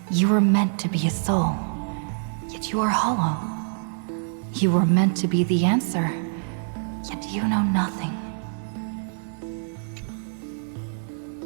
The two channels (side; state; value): left; silent; digital silence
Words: you were meant to be a soul, yet you are hollow. You were meant to be the answer, yet you know nothing.